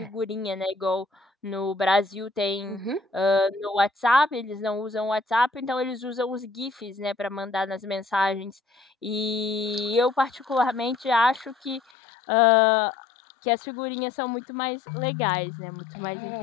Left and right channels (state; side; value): drops out; right; at 11.8 s